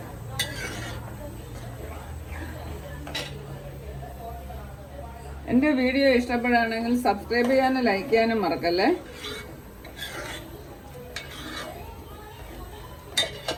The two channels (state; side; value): identical; both; correlation 1.00